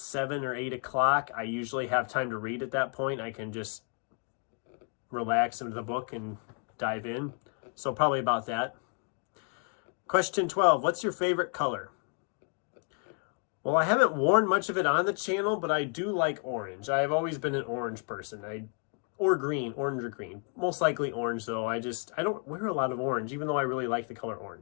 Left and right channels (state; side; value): quieter; right; 40.0 dB